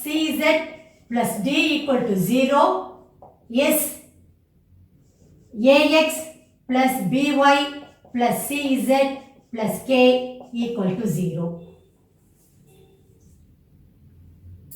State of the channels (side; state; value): both; identical; correlation 1.00